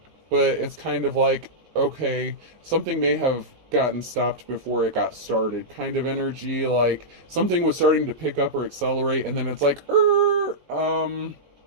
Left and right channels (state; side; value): late; left; 19 ms